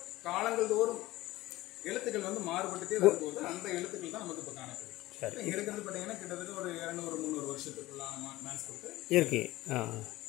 காலங்கள் தோறும் எழுத்துக்கள் வந்து மாறுபட்டுட்டே வரும்போது அந்த எழுத்துக்கள் தான் நமக்கு இப்ப காணப்படுது. இங்க இருக்கிறது பாத்தீங்கன்னா கிட்டத்தட்ட ஒரு 200-300 வருஷத்துக்குள்ளான மேன்ஸ்கிரிப்ட் இருக்கு.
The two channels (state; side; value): quieter; right; 17.8 dB